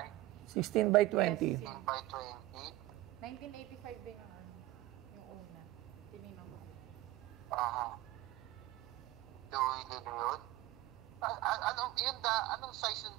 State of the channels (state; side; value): quieter; left; 17.0 dB